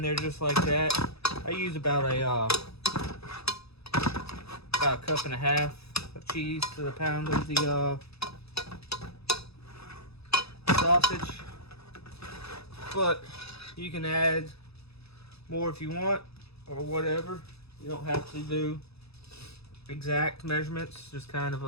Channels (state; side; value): late; right; 0.78 ms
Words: there just like that. I use about a cup and a half of cheese to the pound of the sausage. But you can add more if you want, or whatever. You don't have to do exact measurements, just kind of